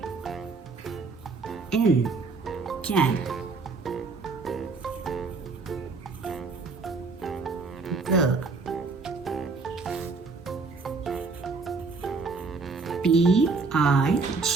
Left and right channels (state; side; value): quieter; left; 4.2 dB